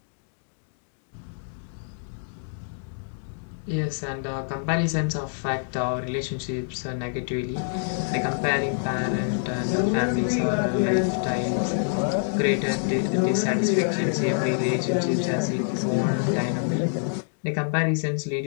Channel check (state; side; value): silent; right; digital silence